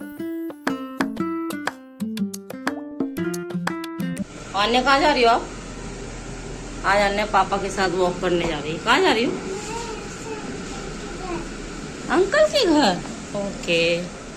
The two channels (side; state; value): both; identical; correlation 1.00